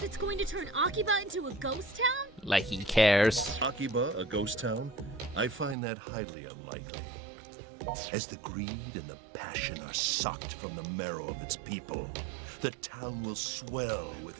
it's going to turn Akiba into a ghost town? Like he cares. Akiba, a ghost town? I find that highly unlikely. As the greed and the passion are sucked from the marrow of its people, the town will swell with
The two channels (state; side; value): drops out; left; at 5.8 s